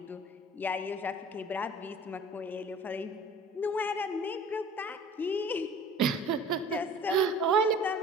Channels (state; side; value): normal; both; correlation 0.46